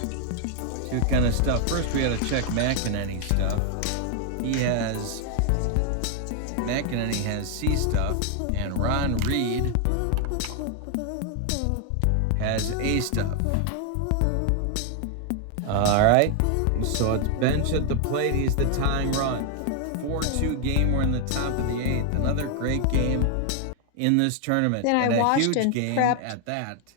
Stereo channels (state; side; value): different; both; correlation 0.00